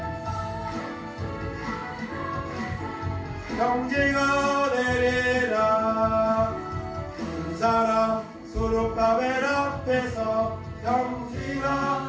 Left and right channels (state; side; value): identical; both; correlation 1.00